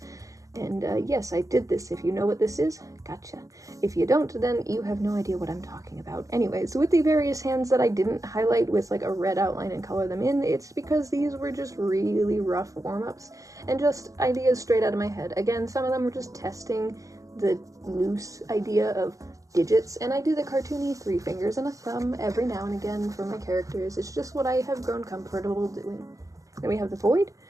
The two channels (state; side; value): late; left; 0.16 ms